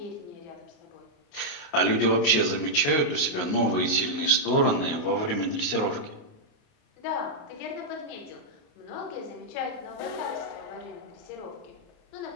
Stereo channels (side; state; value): right; late; 28 ms